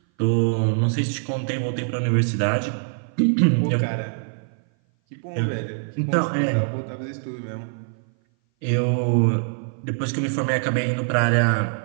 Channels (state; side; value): silent; left; 58 dB below the other